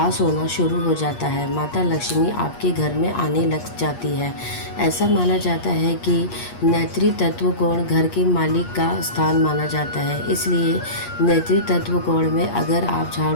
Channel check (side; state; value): right; late; 8.4 ms